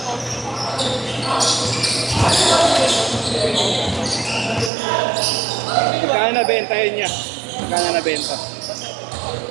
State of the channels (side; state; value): left; drops out; at 4.7 s